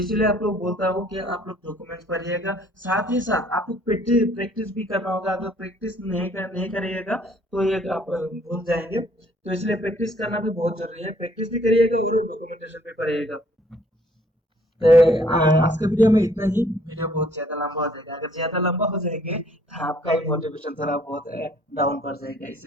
आप लोग बोलता हूँ कि आप लोग डॉक्यूमेंट्स पढ़िएगा, साथ ही साथ आपको प्रैक्टिस प्रैक्टिस भी करना होगा। अगर प्रैक्टिस नहीं करिएगा तो ये आप भूल जाएंगे। तो इसलिए प्रैक्टिस करना भी बहुत जरूरी है, प्रैक्टिस भी करिएगा और डॉक्यूमेंटेशन भी करिएगा। तो आज के वीडियो में इतना ही। वीडियो बहुत ज्यादा लंबा हो जाएगा, अगर ज्यादा लंबा हो जाएंगे तो आपका ही मोटिवेशन थोड़ा बहुत डाउन पड़ जाएगा,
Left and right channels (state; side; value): normal; both; correlation 0.61